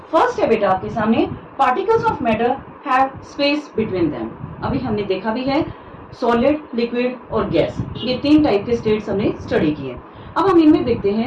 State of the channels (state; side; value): identical; both; correlation 1.00